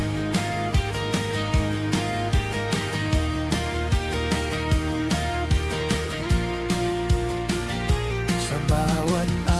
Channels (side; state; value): both; identical; correlation 1.00